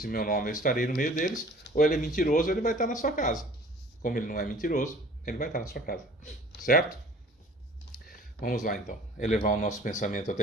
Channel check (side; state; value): both; normal; correlation 0.49